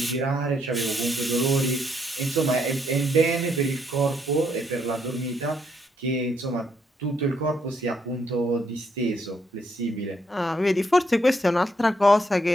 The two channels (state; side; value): normal; both; correlation 0.74